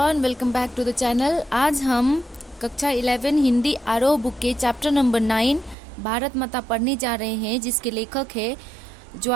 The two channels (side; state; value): left; drops out; at 5.8 s